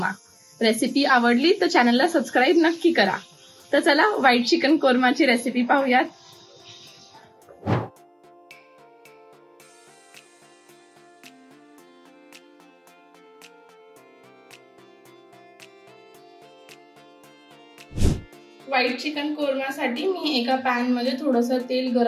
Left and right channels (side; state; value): both; identical; correlation 1.00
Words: रेसिपी आवडली तर चॅनलला सबस्क्राइब नक्की करा। तर चला व्हाईट चिकन कोरमाची रेसिपी पाहूयात। व्हाईट चिकन कोरमासाठी मी एका पॅन मध्ये थोडंसं तेल